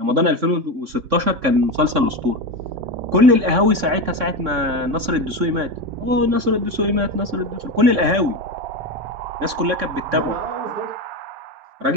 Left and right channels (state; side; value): late; left; 3.6 ms